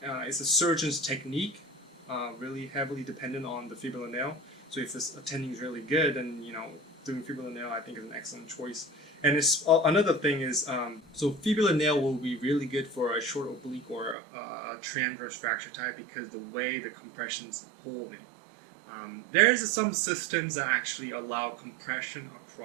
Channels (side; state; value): left; drops out; at 14.2 s